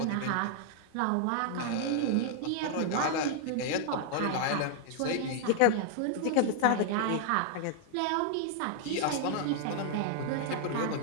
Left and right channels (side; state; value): both; different; correlation -0.01